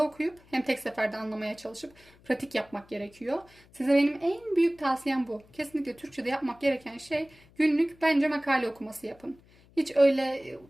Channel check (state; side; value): noise; left; hum, 28 dB below the sound